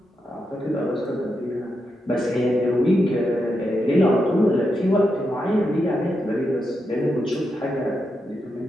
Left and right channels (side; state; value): both; normal; correlation 0.85